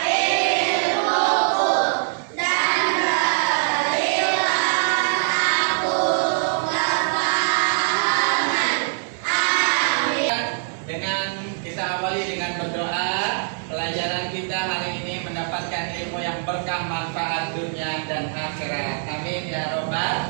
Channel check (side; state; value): left; silent; digital silence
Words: Pelajaran kita hari ini mendapatkan ilmu yang berkah, manfaat dunia dan akhirat. Amin ya